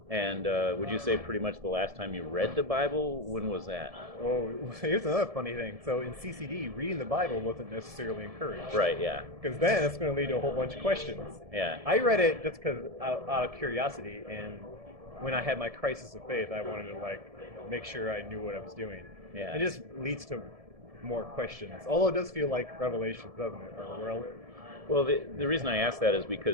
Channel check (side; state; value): left; late; 1.7 ms